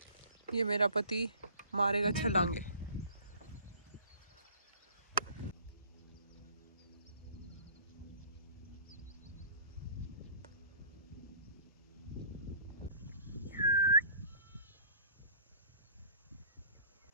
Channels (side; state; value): both; inverted; correlation -0.52